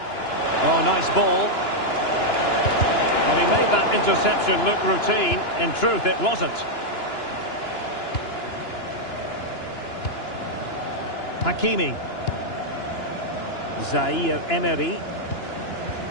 Oh, nice ball. Well, he made that interception look routine. In truth, it wasn't. Hakimi. Zaire Emery.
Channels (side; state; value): right; late; 2.9 ms